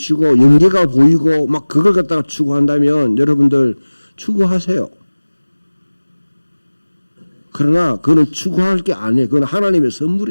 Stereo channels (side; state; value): both; inverted; correlation -1.00